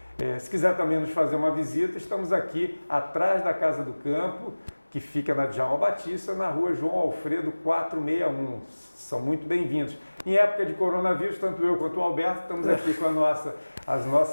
Se quiser também nos fazer uma visita, estamos aqui atrás da Casa do Campo, que fica na Djalma Batista, na rua João Alfredo 461. São muito bem-vindos. Em época de coronavírus, tanto eu quanto o Alberto estamos aqui com os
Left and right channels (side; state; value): both; inverted; correlation -1.00